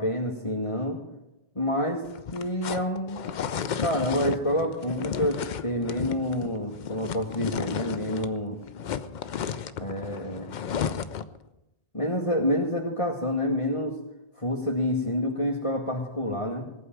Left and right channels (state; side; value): late; right; 2.1 ms